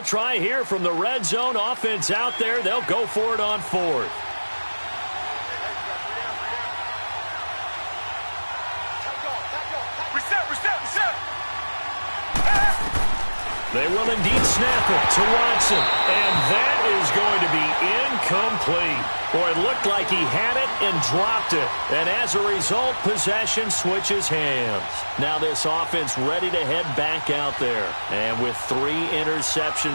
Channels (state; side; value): inverted; both; correlation -1.00